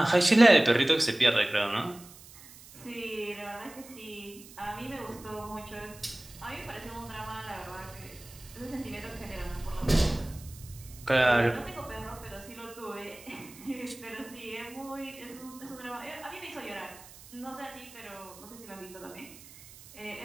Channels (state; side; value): noise; right; hiss, 19 dB below the sound